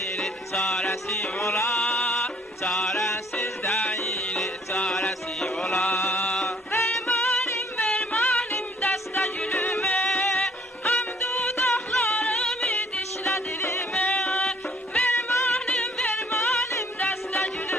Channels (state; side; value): normal; both; correlation 0.61